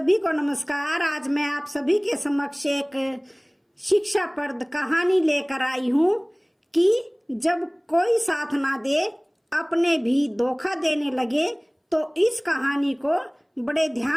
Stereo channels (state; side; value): identical; both; correlation 1.00